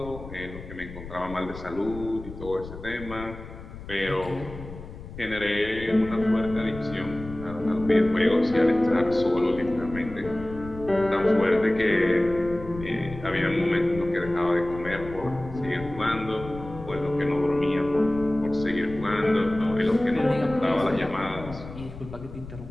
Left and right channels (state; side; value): noise; left; rumble, 13 dB below the sound